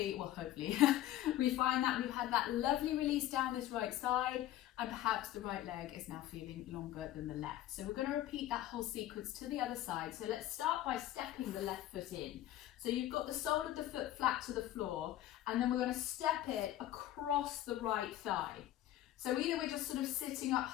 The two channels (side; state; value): right; quieter; 13.5 dB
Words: we find that we've had that lovely release down this right side, and perhaps the right leg is now feeling longer than the left. So we're going to repeat that whole sequence to the other side. So let's start by stepping the left foot in. So you've got the sole of the foot flat to the floor, and then we're going to step it across the right thigh. So either we're just sort of sitting up,